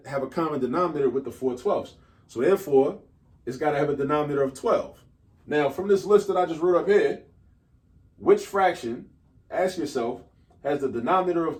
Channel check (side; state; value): both; identical; correlation 1.00